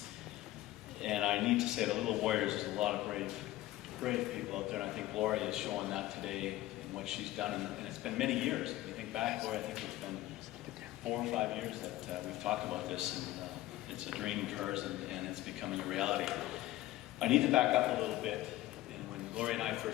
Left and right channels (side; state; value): right; quieter; 16.1 dB